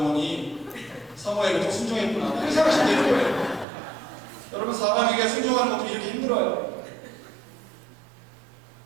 사모에게 또 순종했구나 그렇게 생각하시면 되는 거예요. 여러분 사람에게 순종하는 것도 이렇게 힘들어요.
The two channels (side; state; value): left; drops out; at 3.7 s